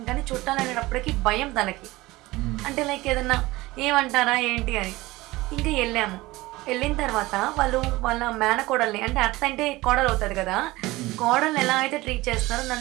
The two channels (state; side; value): quieter; left; 19.7 dB